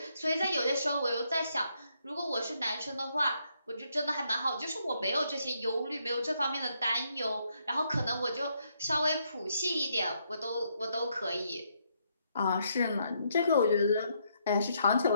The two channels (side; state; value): both; inverted; correlation -0.75